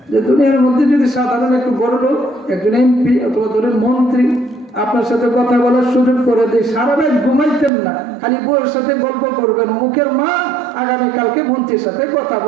যে দুনিয়ার মধ্যে যদি সাধারণ একটু বড় লোক, একজন এমপি অথবা ধরেন মন্ত্রী আপনার সাথে কথা বলার সুযোগ করে দেয়, সারা রাত ঘুমাইতেন না, খালি বউয়ের সাথে গল্প করবেন, মুখের মা আগামীকালকে মন্ত্রীর সাথে কথা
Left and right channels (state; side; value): drops out; left; at 7.7 s